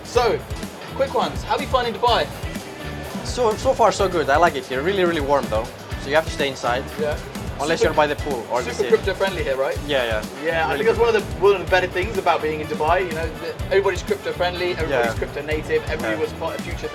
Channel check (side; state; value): both; identical; correlation 1.00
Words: So, quick ones. How are you finding Dubai? So far so good. I like it here. Really, really warm though. So you have to stay inside. Yeah. Unless you're by the pool or the Super sea. crypto friendly here, right? Yeah. Yeah, I Really think that's one of the better things about being in Dubai. You know, everybody's crypto friendly, everybody's crypto native, everybody was part of future